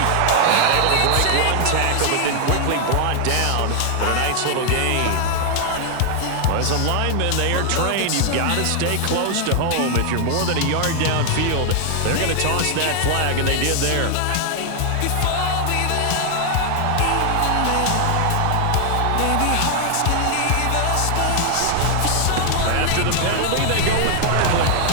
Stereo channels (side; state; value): both; different; correlation 0.00